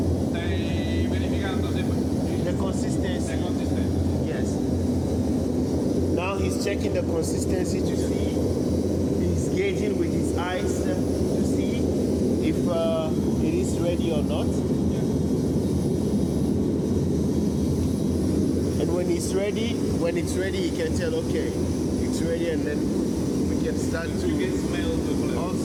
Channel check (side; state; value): both; identical; correlation 1.00